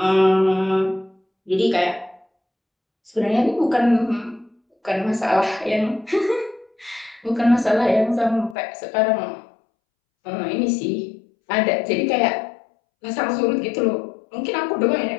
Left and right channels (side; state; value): right; drops out; at 8.6 s